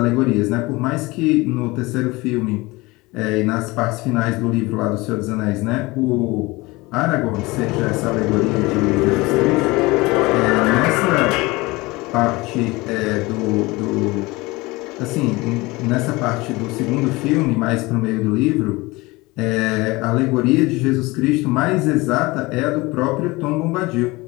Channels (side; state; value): right; quieter; 22.4 dB